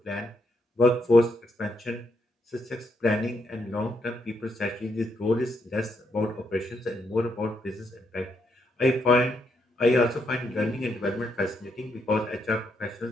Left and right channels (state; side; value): normal; both; correlation 0.77